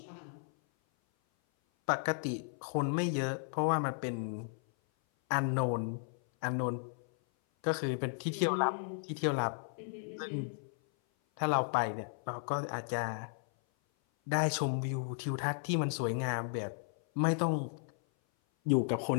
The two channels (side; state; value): right; silent; 55 dB below the other